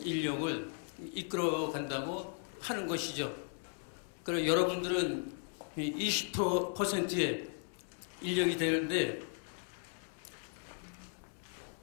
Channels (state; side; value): silent; right; 53 dB below the other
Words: 이끌어 간다고 하는 것이죠. 그럼 여러분들은 20%의 인력이 되는데